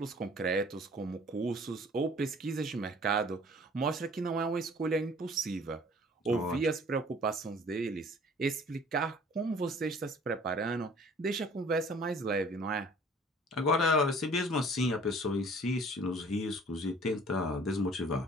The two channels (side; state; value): both; normal; correlation 0.51